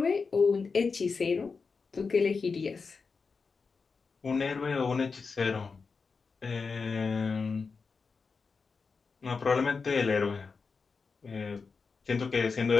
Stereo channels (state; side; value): quieter; right; 4.8 dB